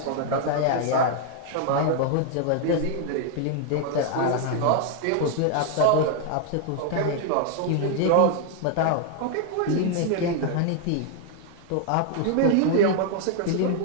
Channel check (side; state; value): both; different; correlation 0.00